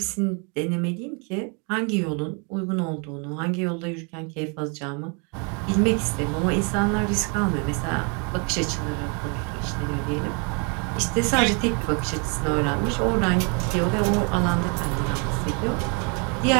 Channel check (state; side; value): quieter; left; 35.3 dB